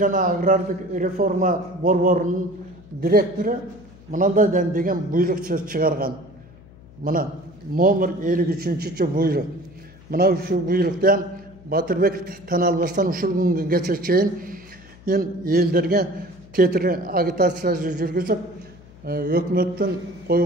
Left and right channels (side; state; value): left; noise; hum, 23 dB below the sound